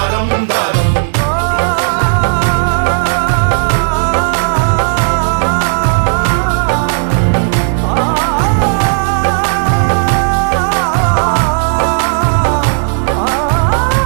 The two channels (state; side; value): silent; left; digital silence